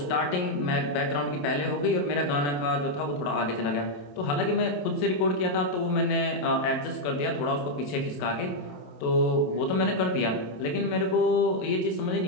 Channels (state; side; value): late; right; 28 ms